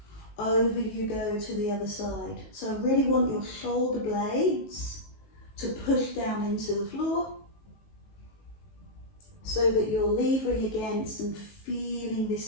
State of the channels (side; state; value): right; late; 19 ms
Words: over you go to the other side. So I really want your shoulder blades to push down into the floor so that you're levering against and feeling